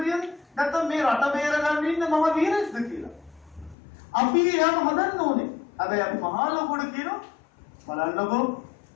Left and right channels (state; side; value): drops out; right; at 3.8 s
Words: නැත්නම් මේ රට බේරගන්න ඉන්න මහ වීරෙක්ද කියලා. අපි එයාම හදන්න ඕනේ. හැබැයි අපි මහා ලොකුට කියනවා බලන්නකෝ